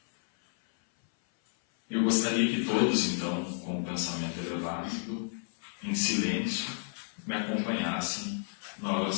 Eu gostaria que todos, então, com o pensamento elevado, em silêncio, me acompanhassem na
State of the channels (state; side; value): silent; right; 57 dB below the other